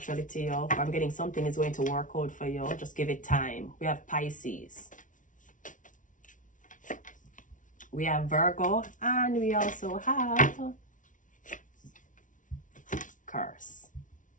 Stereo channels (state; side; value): late; right; 0.37 ms